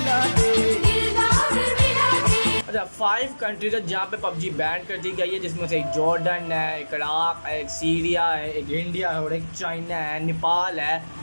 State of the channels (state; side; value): inverted; both; correlation -1.00